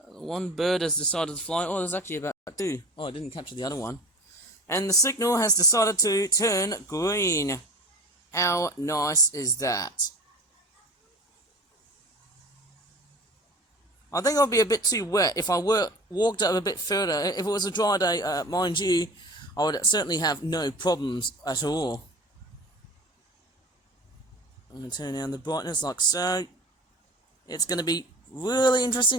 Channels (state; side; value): normal; both; correlation 0.38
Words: One bird has decided to fly. Oh, there's actually about two. Oh, I didn't capture the other one. And the signal has decided to turn green. How nice is that? I think I'll be a bit too wet if I walked up a bit further. If it was a dry day, mind you, I would certainly have no problems at all. I'm going to turn down the brightness like so. It's going to be really interesting